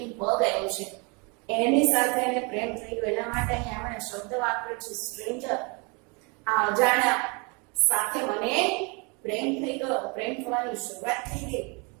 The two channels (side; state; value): left; quieter; 31.4 dB